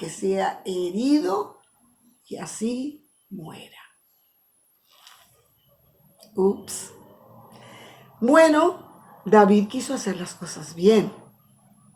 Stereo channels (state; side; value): identical; both; correlation 1.00